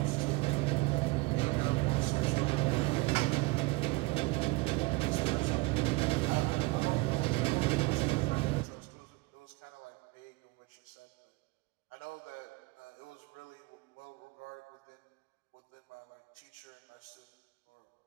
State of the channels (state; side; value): quieter; left; 24.0 dB